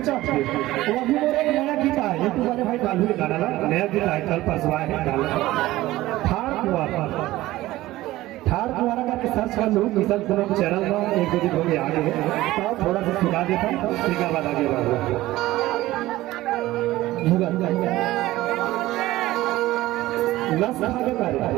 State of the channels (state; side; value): quieter; left; 16.9 dB